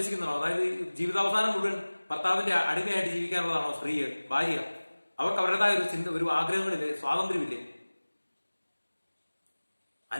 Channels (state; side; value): inverted; both; correlation -1.00